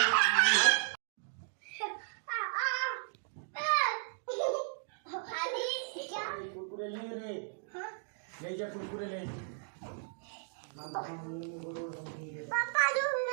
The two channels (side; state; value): left; silent; digital silence